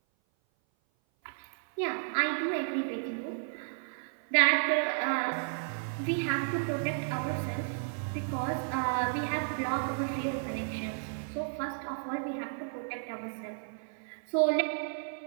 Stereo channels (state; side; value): silent; left; 56 dB below the other